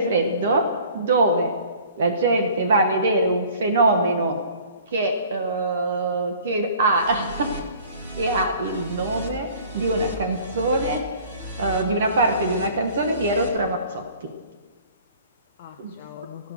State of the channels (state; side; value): inverted; both; correlation -0.50